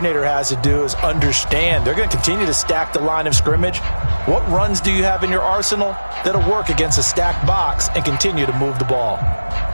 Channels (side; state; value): both; inverted; correlation -1.00